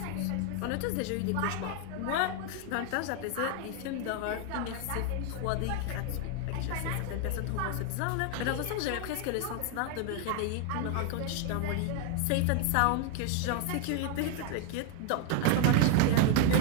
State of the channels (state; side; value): different; both; correlation 0.01